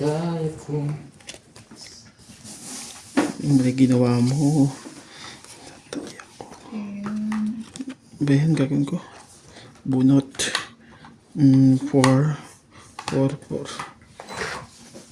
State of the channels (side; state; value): both; identical; correlation 1.00